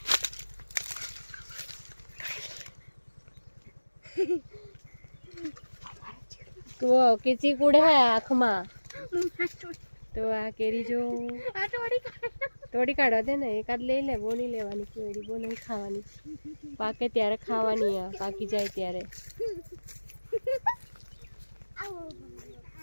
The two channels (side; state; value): both; inverted; correlation -1.00